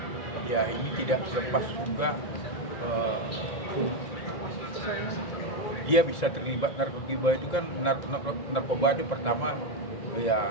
ya ini tidak lepas juga dia bisa terlibat narkoba itu kan narkoba itu pertama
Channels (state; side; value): late; right; 2.0 ms